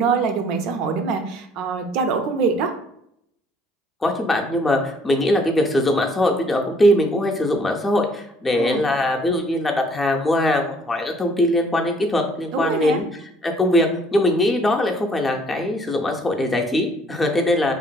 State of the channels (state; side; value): normal; both; correlation 0.61